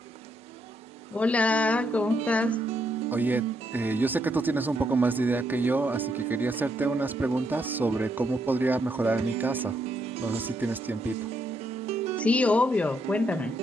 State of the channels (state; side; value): normal; both; correlation 0.76